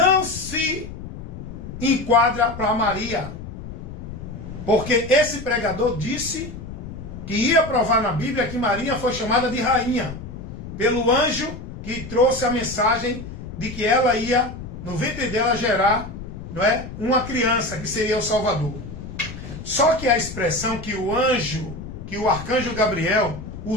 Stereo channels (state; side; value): noise; left; rumble, 11 dB below the sound